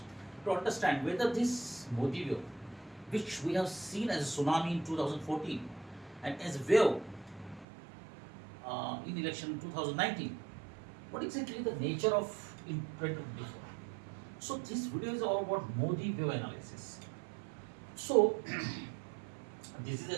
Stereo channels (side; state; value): left; drops out; at 7.7 s